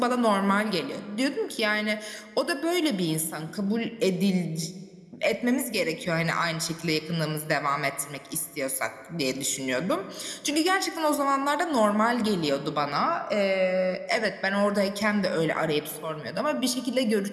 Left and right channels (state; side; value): identical; both; correlation 1.00